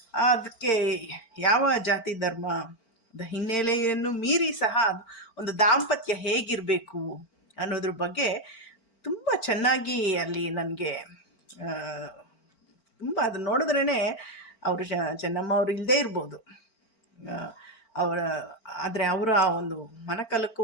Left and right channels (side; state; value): right; late; 4.4 ms